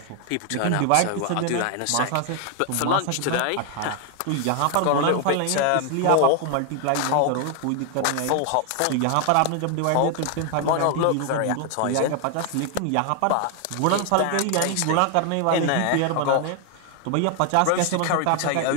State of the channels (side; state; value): both; different; correlation 0.00